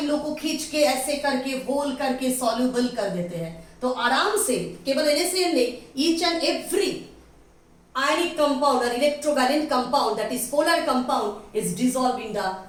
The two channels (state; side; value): identical; both; correlation 1.00